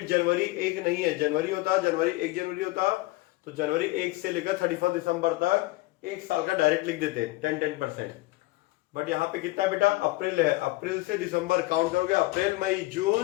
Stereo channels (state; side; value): quieter; right; 20.4 dB